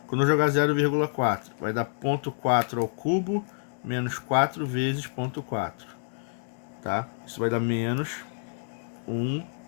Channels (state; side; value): silent; right; digital silence